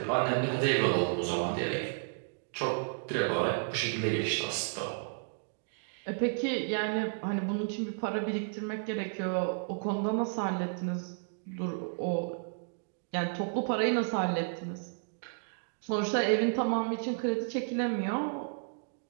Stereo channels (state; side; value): silent; left; digital silence